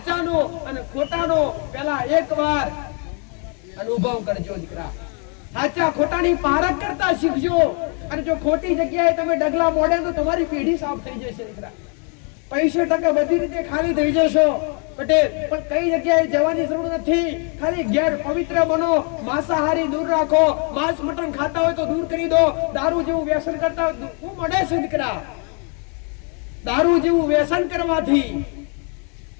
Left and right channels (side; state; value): right; quieter; 38.4 dB